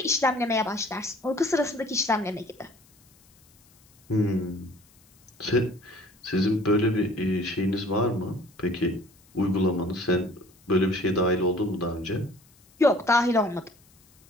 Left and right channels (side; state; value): left; noise; hiss, 30 dB below the sound